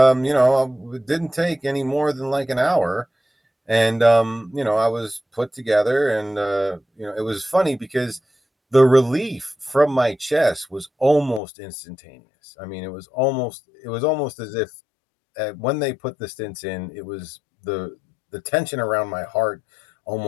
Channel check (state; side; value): drops out; right; at 11.4 s